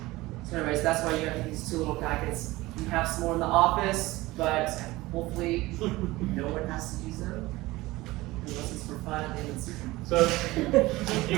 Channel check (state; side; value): quieter; left; 19.6 dB